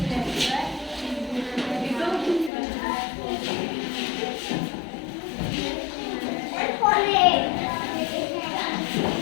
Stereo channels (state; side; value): drops out; right; at 2.5 s